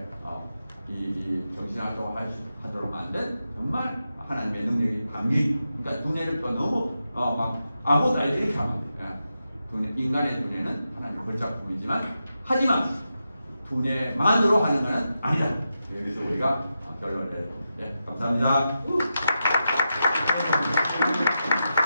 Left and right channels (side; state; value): both; inverted; correlation -0.88